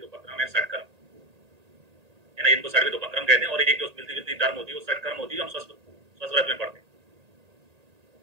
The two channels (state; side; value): late; left; 1.8 ms